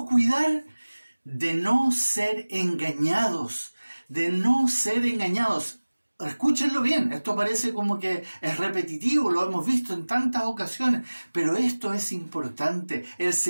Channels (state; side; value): inverted; both; correlation -1.00